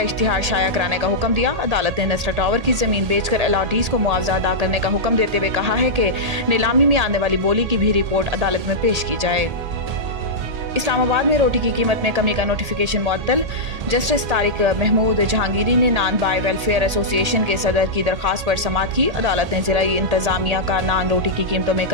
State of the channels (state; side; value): late; left; 1.8 ms